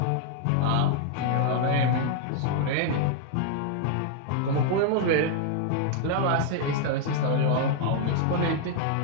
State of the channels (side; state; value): both; different; correlation 0.00